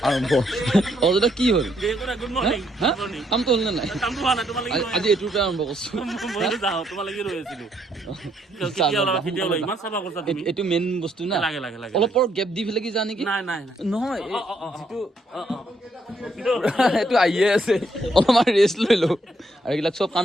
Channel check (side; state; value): both; normal; correlation 0.72